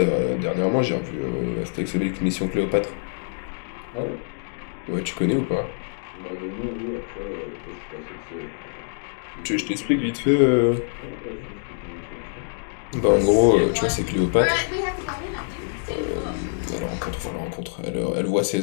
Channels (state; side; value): silent; right; digital silence